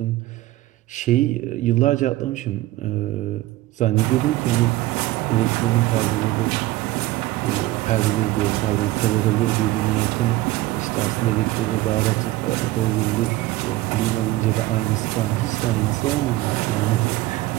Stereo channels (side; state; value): left; quieter; 17.1 dB